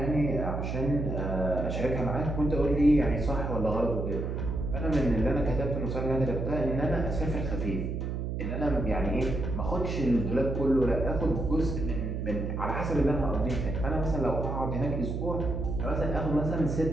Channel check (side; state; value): right; noise; hum, 3 dB below the sound